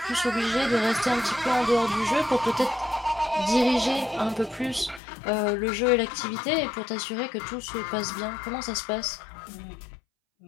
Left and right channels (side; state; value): right; drops out; at 5.0 s